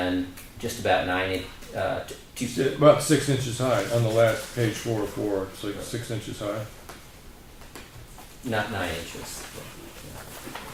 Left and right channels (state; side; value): identical; both; correlation 1.00